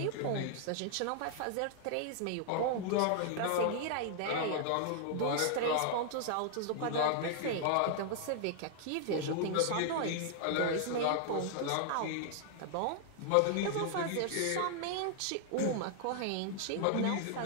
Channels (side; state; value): both; different; correlation 0.00